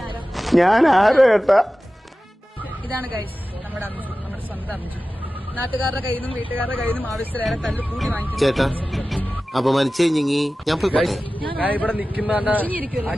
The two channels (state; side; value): normal; both; correlation 0.95